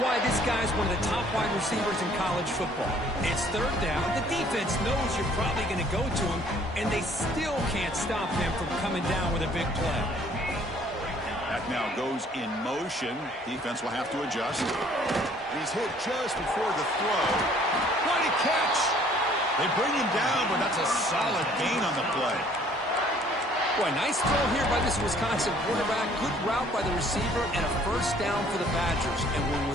this guy's one of the top wide receivers in college football. It's 3rd down. The defense knows you're probably going to go to him, and they still can't stop him from coming down with a big play. That now goes in motion. Defense will have to adjust. He's hit just before the throw. What a catch! They bring him down, but that's a solid gain on the play. Boy, nice throw here by this Wisconsin quarterback. Good route by the receiver and a 1st down for the Badgers. And when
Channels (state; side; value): normal; both; correlation 0.58